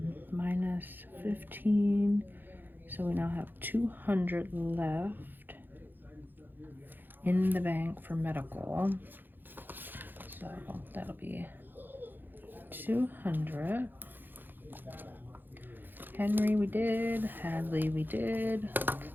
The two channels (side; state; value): left; late; 0.092 ms